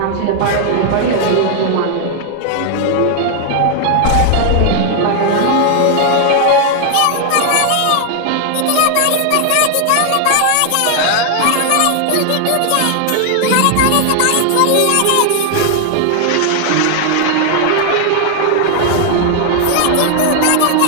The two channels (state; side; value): different; both; correlation 0.00